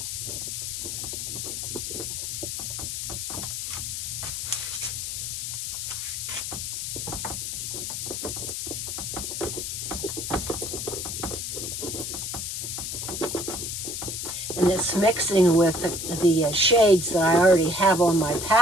and it's mixing with the shades that I already have on my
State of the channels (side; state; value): left; noise; hiss, 4 dB below the sound